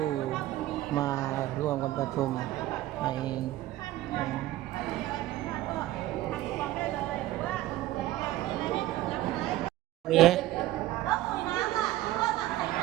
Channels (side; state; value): left; quieter; 15.4 dB